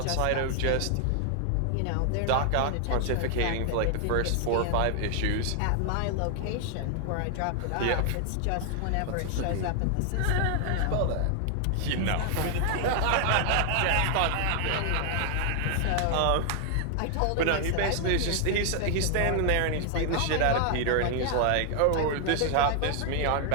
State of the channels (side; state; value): both; different; correlation 0.00